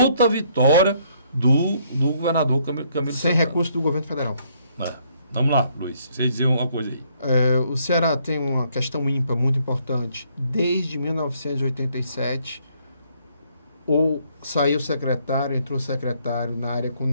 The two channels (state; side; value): inverted; both; correlation -0.68